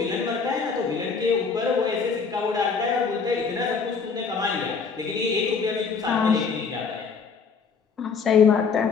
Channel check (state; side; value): quieter; right; 5.4 dB